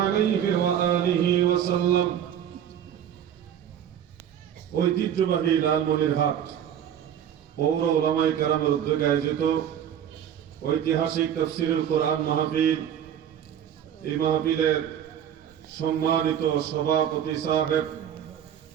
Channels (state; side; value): quieter; left; 9.7 dB